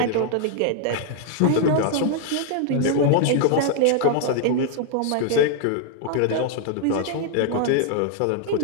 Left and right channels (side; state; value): both; different; correlation 0.00